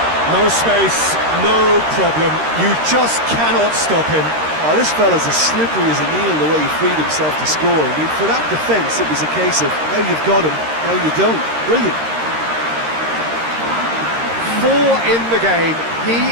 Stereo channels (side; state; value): left; late; 13 ms